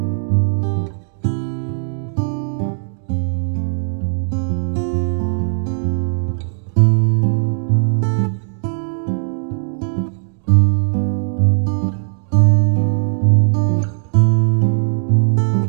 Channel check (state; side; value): silent; left; digital silence